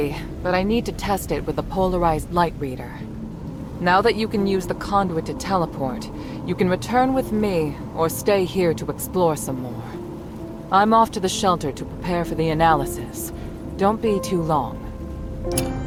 but I need to test it with the polarized light reader. Now that you can use the conduit to teleport, you can return with me or stay here to explore some more. I'm off to the shelter to prepare for the analysis. Don't be too long.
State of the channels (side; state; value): both; identical; correlation 1.00